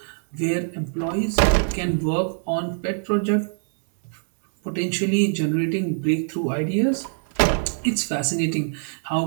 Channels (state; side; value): silent; left; 63 dB below the other